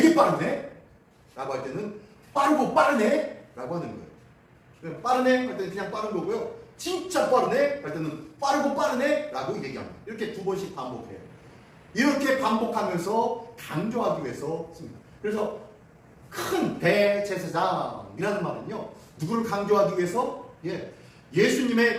빠르네? 라고 할 때는 빠르고 빠르네? 라고 하는 거예요. 빠르네? 할 때는 그냥 빠른 거고요. 진짜 빠르네? 할 때는 빠르고 빠르네? 라고 얘기합니다. 이렇게 두 번씩 반복해요. 이렇게 반복하면서 강조하기 위해서 씁니다. 그래서 큰 대제사장이라는 말은요, 누구를 강조하기 위해서?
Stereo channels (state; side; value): identical; both; correlation 1.00